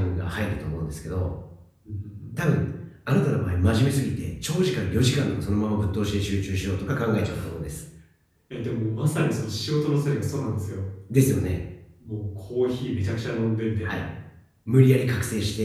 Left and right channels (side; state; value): both; identical; correlation 1.00